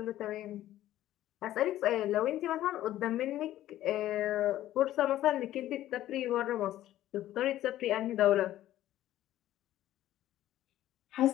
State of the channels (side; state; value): right; quieter; 13.7 dB